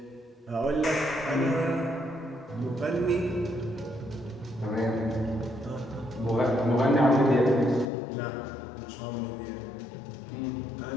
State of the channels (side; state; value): right; drops out; at 7.9 s